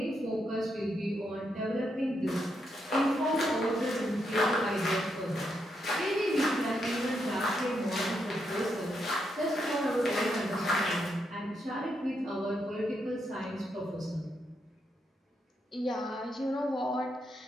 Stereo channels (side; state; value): both; normal; correlation 0.80